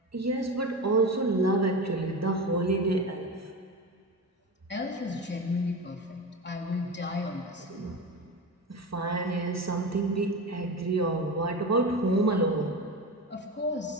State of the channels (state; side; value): normal; both; correlation 0.25